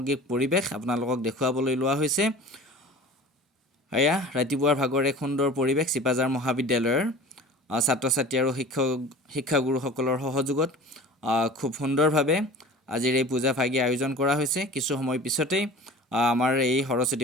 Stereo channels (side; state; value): both; normal; correlation 0.40